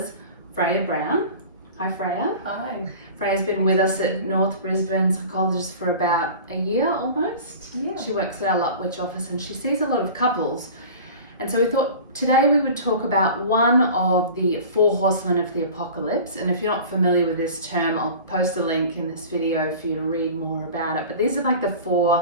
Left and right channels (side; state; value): both; inverted; correlation -0.38